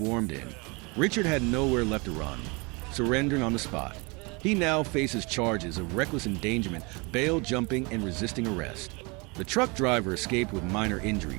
in. Richard had nowhere left to run, surrendering on the spot. He now faces charges of reckless endangerment, bail jumping, and resisting arrest. The truck driver escaped with minor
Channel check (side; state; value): left; quieter; 28.7 dB